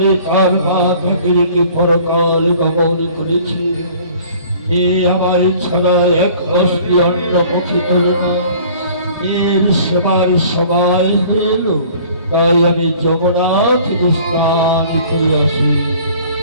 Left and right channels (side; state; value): both; inverted; correlation -0.51